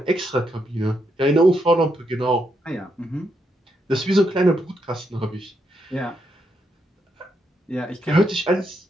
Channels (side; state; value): both; normal; correlation 0.79